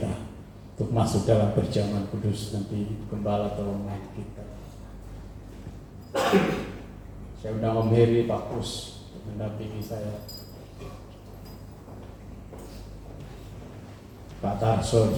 untuk masuk dalam perjamuan kudus nanti. Gembala tolong kita. Saya undang Om Heri, Pak Pus untuk mendampingi saya. Pak Tarso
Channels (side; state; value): both; identical; correlation 1.00